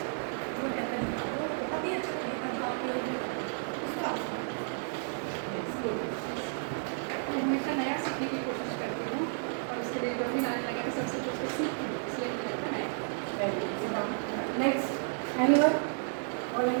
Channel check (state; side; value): silent; left; 56 dB below the other